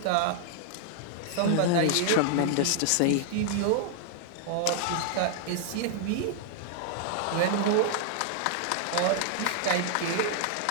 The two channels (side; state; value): both; different; correlation 0.00